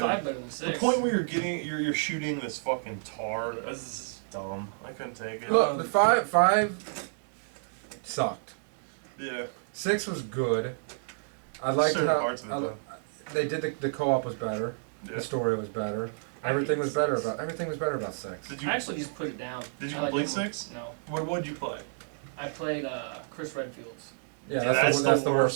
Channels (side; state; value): left; silent; digital silence